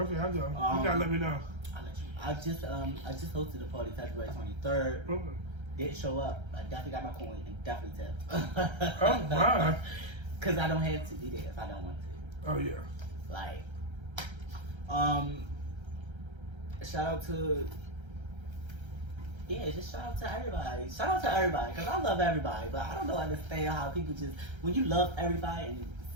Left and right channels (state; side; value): late; left; 1.3 ms